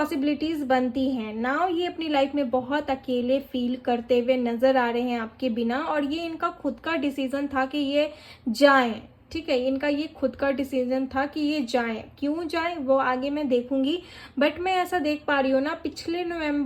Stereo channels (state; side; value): identical; both; correlation 1.00